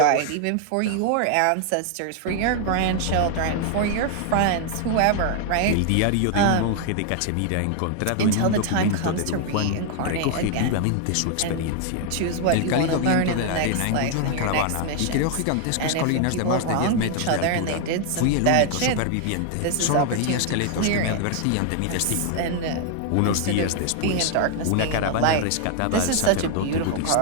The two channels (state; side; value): different; both; correlation 0.00